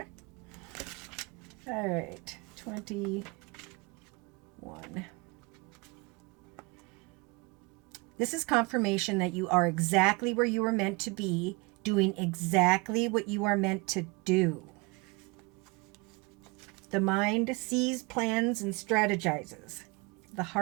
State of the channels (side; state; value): left; quieter; 27.2 dB